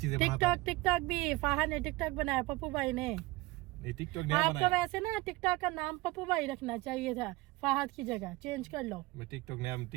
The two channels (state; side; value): quieter; left; 21.2 dB